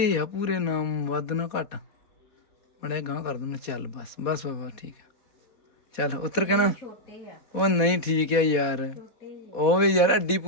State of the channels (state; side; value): late; right; 4.1 ms